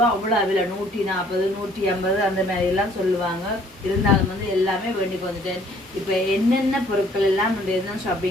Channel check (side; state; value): both; normal; correlation 0.59